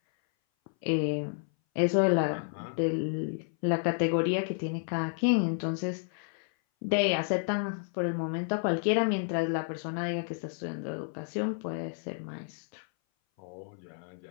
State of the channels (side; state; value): right; silent; 57 dB below the other